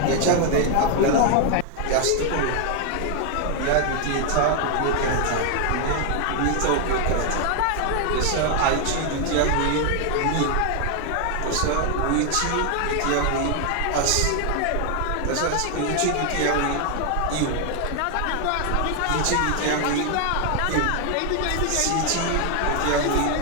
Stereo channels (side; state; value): both; different; correlation 0.00